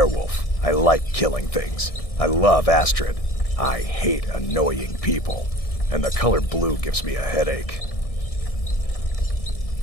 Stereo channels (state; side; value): late; right; 1.6 ms